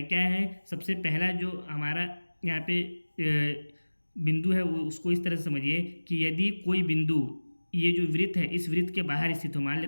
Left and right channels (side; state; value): both; inverted; correlation -1.00